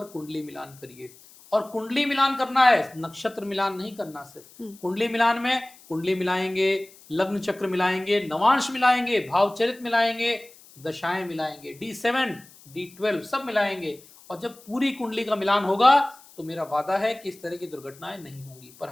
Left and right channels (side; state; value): left; noise; hiss, 24 dB below the sound